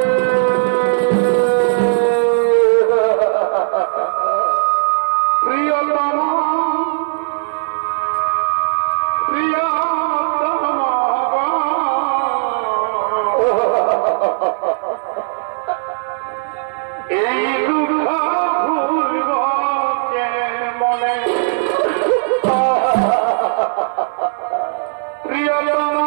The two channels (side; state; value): left; silent; 59 dB below the other